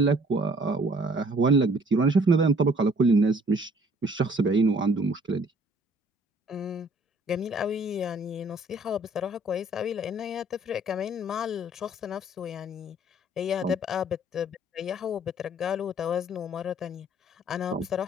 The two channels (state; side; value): normal; both; correlation 0.57